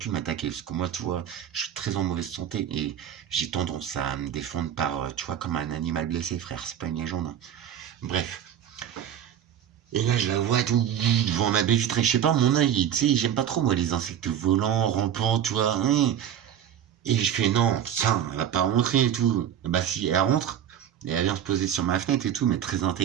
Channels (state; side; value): quieter; left; 9.7 dB